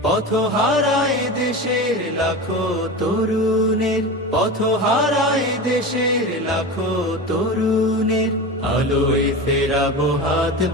পথ হারায় দেশের লাখো তরুণের, পথ হারায় দেশের লাখো তরুণের, আলোয় ফেরাবো হাত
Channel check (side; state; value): both; normal; correlation 0.27